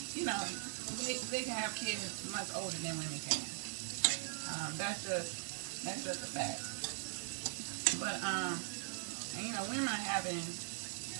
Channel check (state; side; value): silent; left; 51 dB below the other